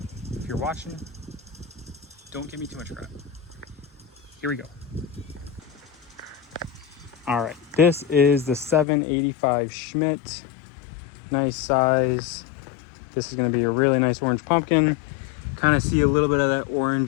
if you're watching, don't give me too much crap. Here we go. All right, this is the 785 Schmidt. Nice size. This is gonna be a really nice orange pumpkin. Kind of see a little bit of that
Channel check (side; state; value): right; drops out; at 8.8 s